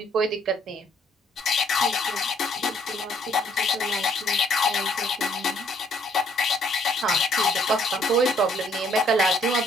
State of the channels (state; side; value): normal; both; correlation 0.66